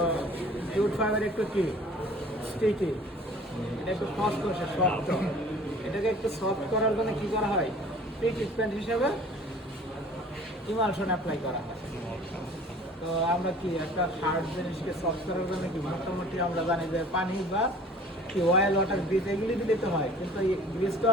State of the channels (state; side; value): normal; both; correlation 0.49